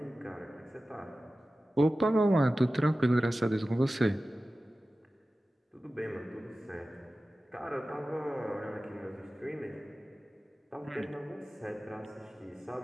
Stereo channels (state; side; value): normal; both; correlation 0.95